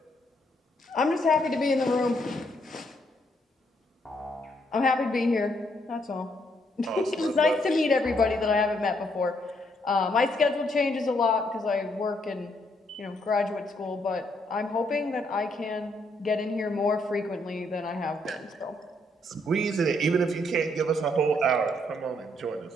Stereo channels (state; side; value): normal; both; correlation 0.73